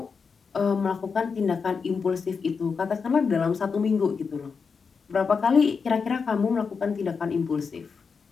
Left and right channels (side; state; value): right; quieter; 5.4 dB